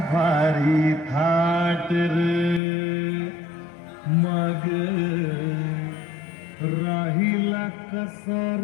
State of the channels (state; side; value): drops out; right; at 2.6 s